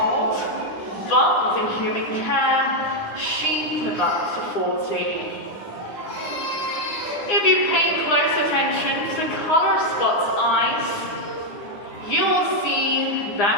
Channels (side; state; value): right; late; 9.7 ms